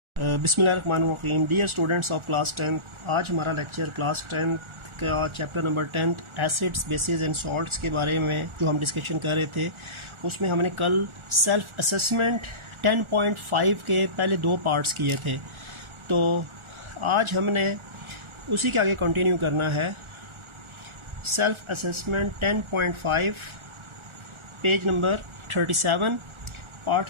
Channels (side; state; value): left; late; 1.4 ms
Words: बिस्मिल्लाहिर्रहमानिर्रहीम। Dear students of class 10, आज हमारा लेक्चर क्लास 10 का chapter number 10 acids bases and salts के बारे में जो हम डिस्कशन कर रहे थे, उसमें हमने कल सेल्फ असेसमेंट 10.5 के पहले दो पार्ट्स किए थे। तो आज हमने उसी के आगे कंटिन्यू करना है। Self assessment 10.5 page number 37, part